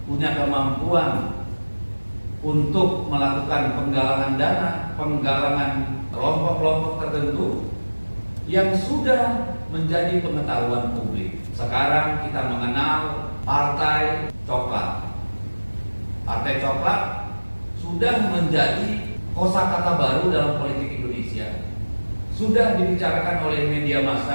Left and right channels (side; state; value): both; inverted; correlation -1.00